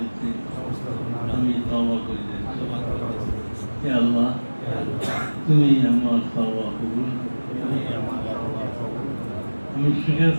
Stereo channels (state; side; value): inverted; both; correlation -1.00